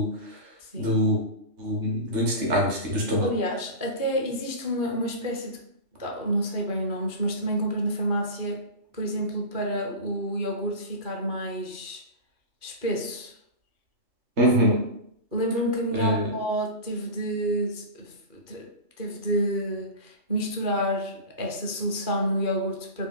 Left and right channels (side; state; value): left; late; 2.4 ms